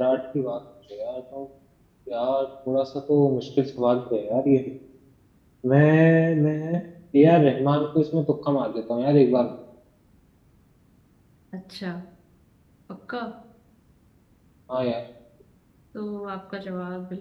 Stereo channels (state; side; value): identical; both; correlation 1.00